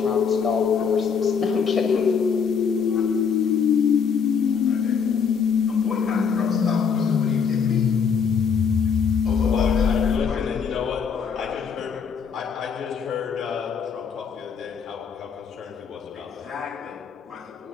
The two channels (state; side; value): quieter; right; 6.4 dB